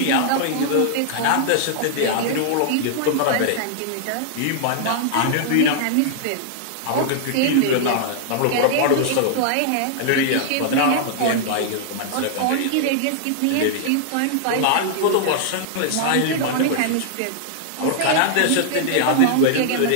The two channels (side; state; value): both; different; correlation -0.01